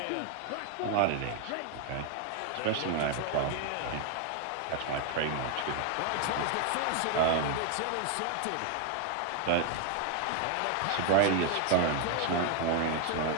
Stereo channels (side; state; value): both; different; correlation 0.00